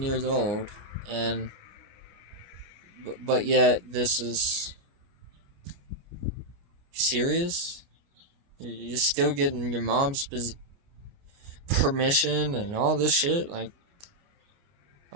years old. And, but yet, this is... serious? You're still getting your mom's permission and all this shit? Like,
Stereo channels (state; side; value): late; left; 29 ms